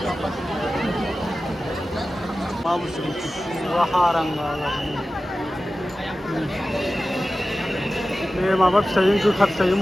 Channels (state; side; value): normal; both; correlation 0.94